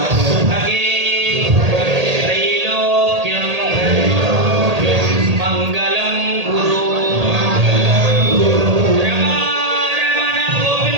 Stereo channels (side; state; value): left; late; 1.8 ms